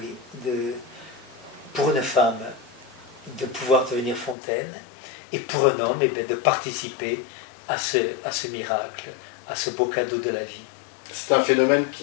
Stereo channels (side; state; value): right; drops out; at 4.4 s